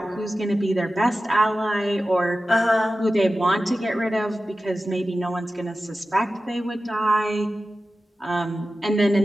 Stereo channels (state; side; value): normal; both; correlation 0.94